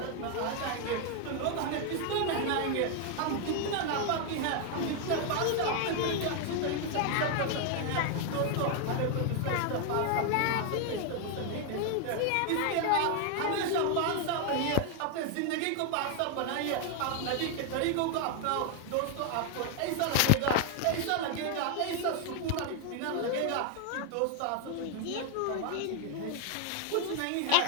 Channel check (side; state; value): both; different; correlation 0.01